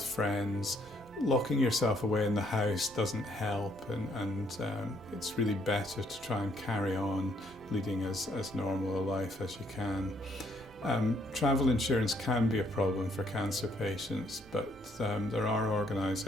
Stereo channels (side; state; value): both; normal; correlation 0.68